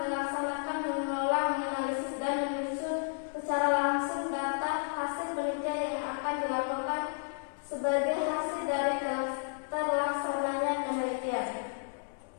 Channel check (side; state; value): right; silent; digital silence